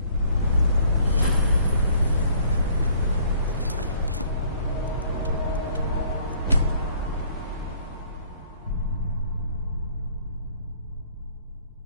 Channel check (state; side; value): inverted; both; correlation -0.58